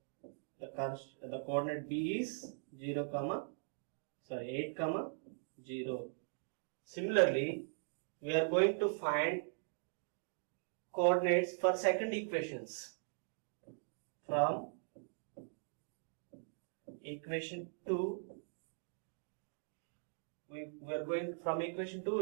The coordinate b is 8 comma 0. Similarly, we are going to find coordinates for second equations. From equation 2, we are going from equation 2,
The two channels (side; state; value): left; silent; digital silence